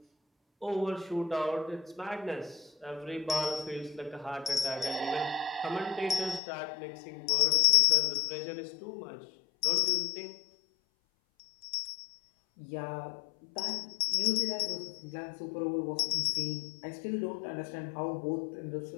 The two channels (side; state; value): right; drops out; at 6.4 s